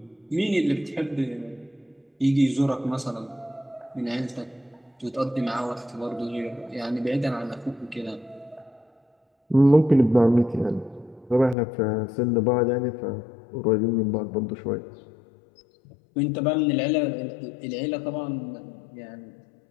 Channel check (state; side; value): drops out; right; at 11.6 s